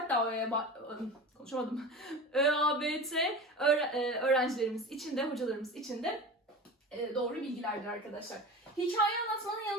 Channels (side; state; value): both; normal; correlation 0.32